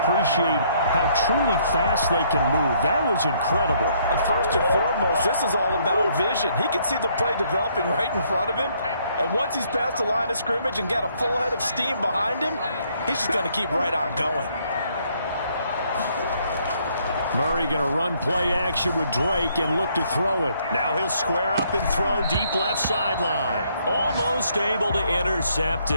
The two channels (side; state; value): both; inverted; correlation -0.68